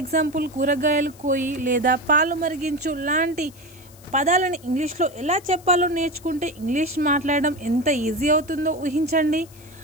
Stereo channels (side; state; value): left; noise; hiss, 24 dB below the sound